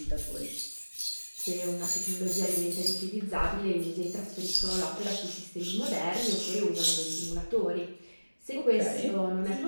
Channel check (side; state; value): both; inverted; correlation -1.00